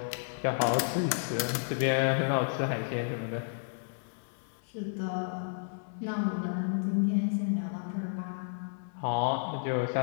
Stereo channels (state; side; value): silent; right; 57 dB below the other